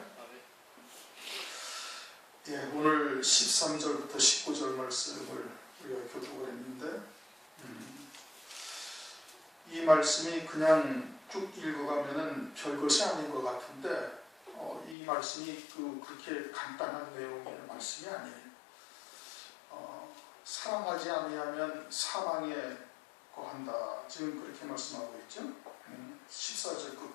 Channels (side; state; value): right; drops out; at 15.0 s